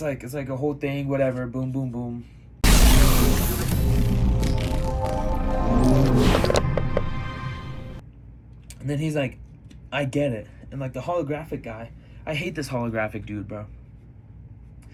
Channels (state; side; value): identical; both; correlation 1.00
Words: like a whole thing, whatever, boom, boom, boom. And then he's like, I get it. And like the holographic guy, I hate this holographic dude, bro.